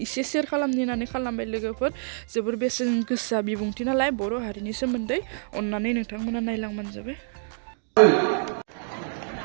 एसे शेयार खालामनो होननानै खालामबाय लोगोफोर। जोबोर बेसेन गोसा बिबुंथि नालाय बर' हारिनि सोमोन्दै, अन्नानै नोंथांमोना नायलांबानो जाबाय।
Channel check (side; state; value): left; silent; 59 dB below the other